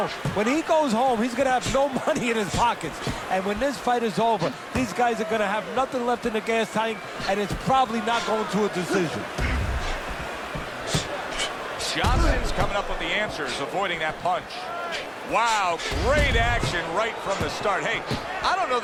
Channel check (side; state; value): both; identical; correlation 1.00